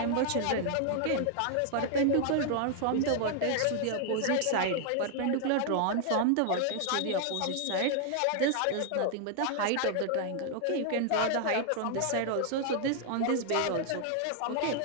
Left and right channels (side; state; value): both; different; correlation 0.00